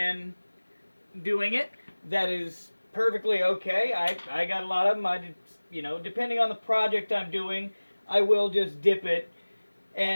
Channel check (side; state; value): both; inverted; correlation -1.00